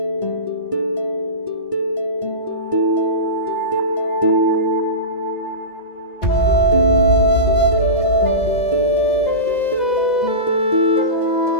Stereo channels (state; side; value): late; right; 2.0 ms